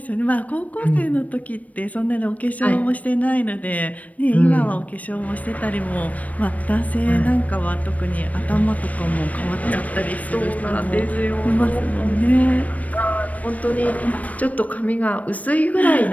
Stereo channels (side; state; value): right; late; 0.070 ms